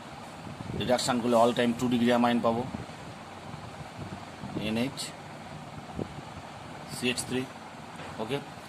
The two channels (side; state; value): both; identical; correlation 1.00